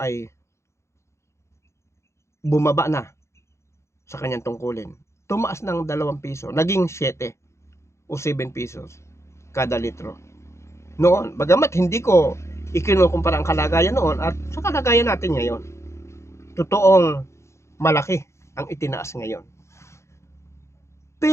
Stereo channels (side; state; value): right; late; 0.14 ms